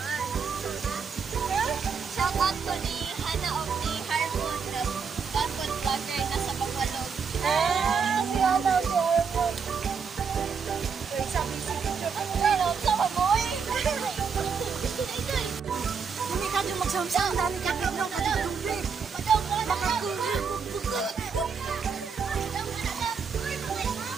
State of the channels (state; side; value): quieter; left; 6.0 dB